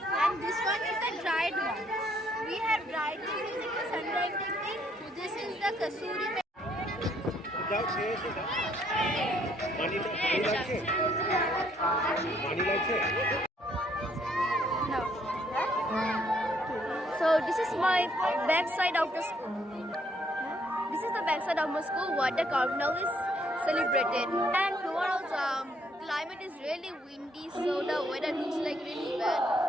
and this one is the dried one. We have dried this using the sun-drying technique. This is the kasuri. No. So this is my backside of the school. This is the backside of my school where the carnival is celebrated. And tomorrow's climate is really windy, so the weather looks like really bad.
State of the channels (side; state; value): both; normal; correlation 0.68